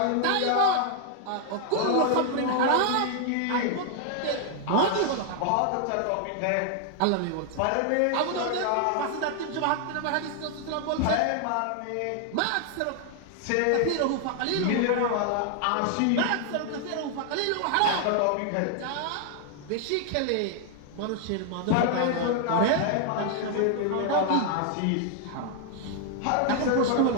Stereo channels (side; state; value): both; different; correlation 0.00